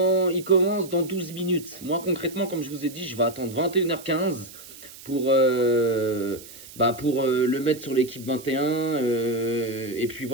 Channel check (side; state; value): right; noise; hiss, 17 dB below the sound